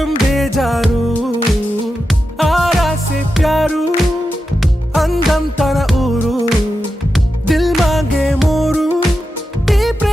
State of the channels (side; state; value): both; normal; correlation 0.90